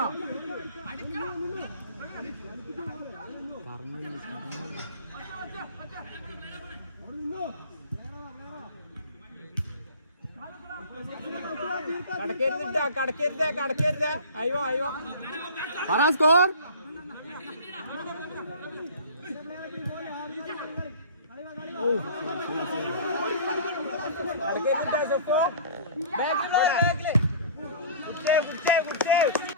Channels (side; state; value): both; inverted; correlation -0.41